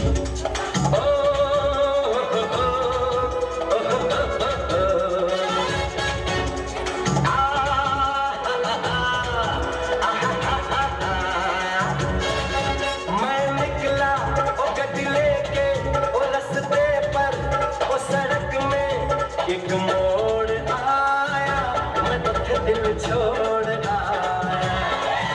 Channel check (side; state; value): both; identical; correlation 1.00